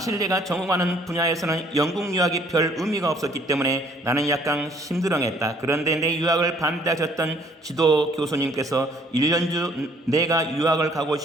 내가 전공하는 분야에서는 영국 유학이 별 의미가 없었기 때문에 나는 약간 심드렁했다. 그런데 내 유학을 반대하셨던 지도 교수님께서 1년 주 내가 유학을 가고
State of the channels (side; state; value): both; normal; correlation 0.61